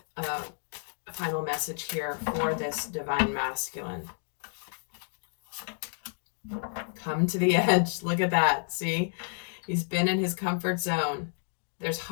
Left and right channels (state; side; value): silent; right; 58 dB below the other